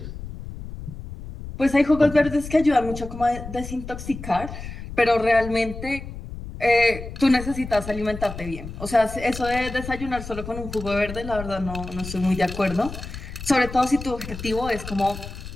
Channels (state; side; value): noise; left; rumble, 10 dB below the sound